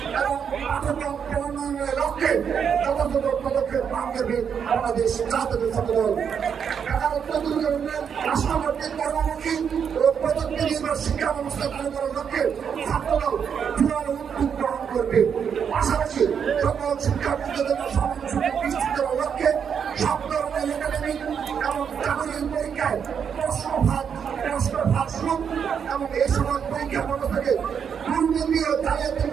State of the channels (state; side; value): quieter; left; 7.3 dB